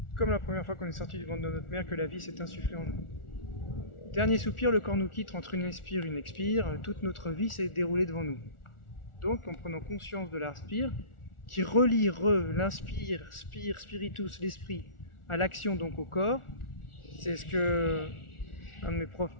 Comme la première fois qu'on est sorti du ventre de notre mère, que la vie s'est insufflée en nous. Dernier soupir, le corps nous quitte entre une inspire et une expire, toute notre vie s'est déroulée devant nous. Donc, en prenant conscience de l'inspire, qui relie l'inspire, spire, spiritus, l'esprit, à l'action, donc au corps, c'est ce que un de mes profs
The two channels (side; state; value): right; late; 1.4 ms